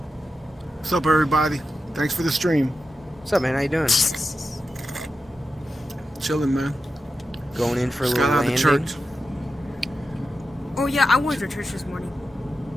What's up, everybody? Thanks for the stream. What's up, man? How you doing? Chilling, man. Going in for a Just little got out of landing. church. Oh yeah, I went to church this morning.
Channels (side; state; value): both; normal; correlation 0.91